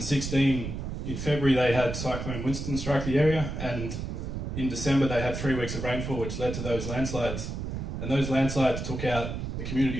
in February, they had Cyclone Winston strike the area, and in December they had 3 weeks of rainfall, which led to those landslides. And those landslides took out the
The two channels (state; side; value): noise; right; rumble, 5 dB below the sound